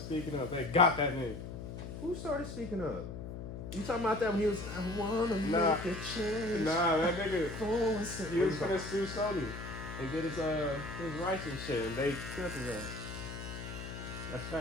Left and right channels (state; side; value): noise; left; hum, 8 dB below the sound